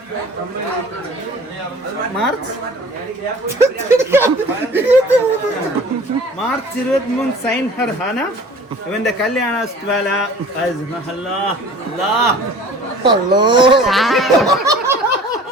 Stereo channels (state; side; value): normal; both; correlation 0.46